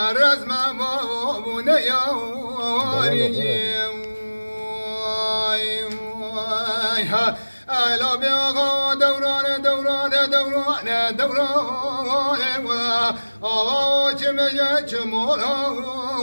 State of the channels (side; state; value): both; inverted; correlation -1.00